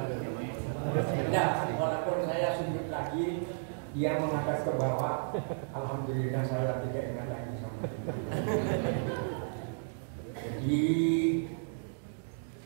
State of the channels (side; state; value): left; silent; digital silence